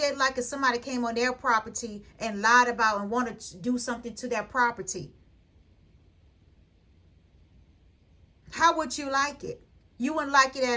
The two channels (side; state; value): both; identical; correlation 1.00